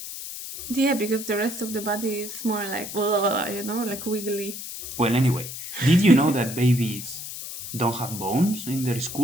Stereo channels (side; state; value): left; noise; hiss, 9 dB below the sound